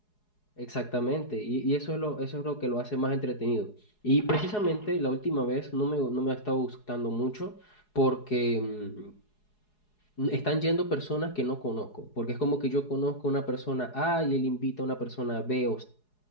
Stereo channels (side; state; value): right; late; 4.8 ms